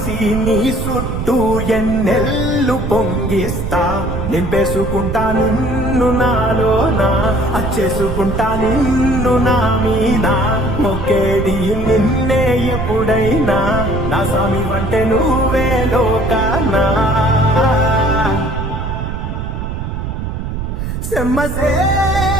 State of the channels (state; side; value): noise; right; rumble, 4 dB below the sound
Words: నీ చుట్టూ ఎన్నెల్లు పొంగిస్తా నింపేసుకుంటా నిన్ను నాలోనా అచ్చేసుకుంటా నిన్ను నా మీద మొక్కేది నిన్నే ఎప్పుడైనా నా స్వామి వంటే నువ్వే లోకానా